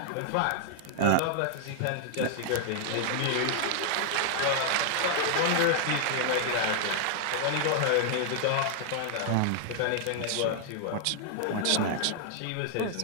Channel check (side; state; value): both; different; correlation 0.00